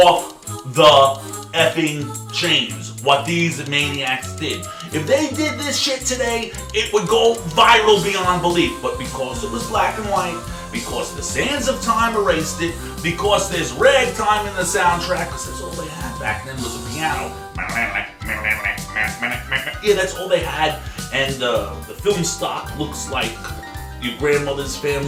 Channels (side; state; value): both; identical; correlation 1.00